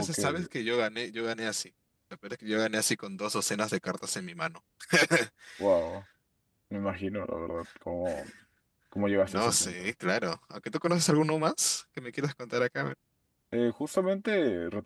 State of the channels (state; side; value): identical; both; correlation 1.00